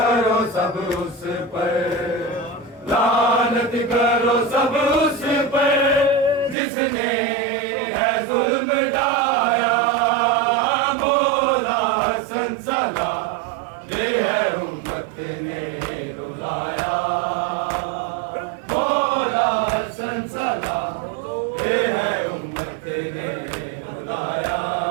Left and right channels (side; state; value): left; drops out; at 6.6 s